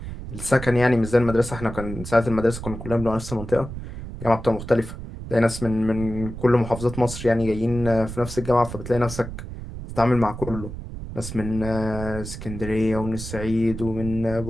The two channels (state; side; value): noise; right; rumble, 10 dB below the sound